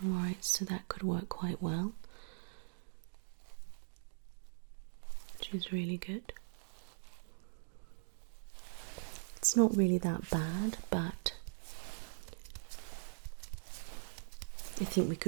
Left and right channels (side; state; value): left; silent; digital silence